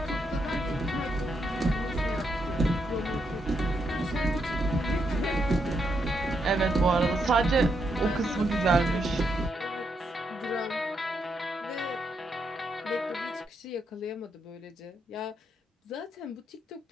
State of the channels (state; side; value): normal; both; correlation 0.80